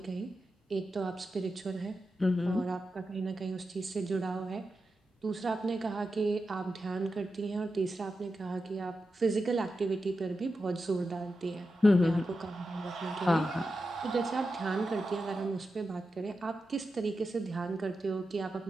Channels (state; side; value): normal; both; correlation 0.90